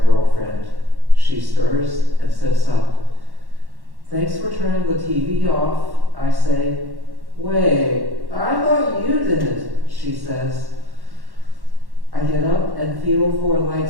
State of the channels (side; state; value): left; late; 1.1 ms